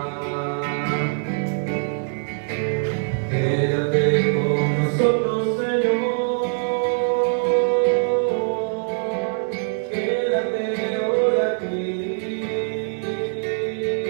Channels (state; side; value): silent; left; 64 dB below the other